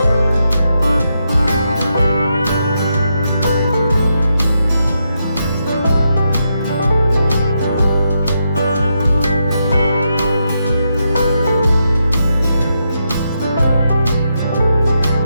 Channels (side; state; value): both; inverted; correlation -0.82